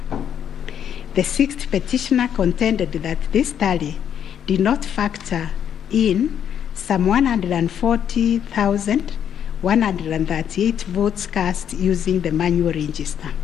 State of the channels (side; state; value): right; quieter; 9.0 dB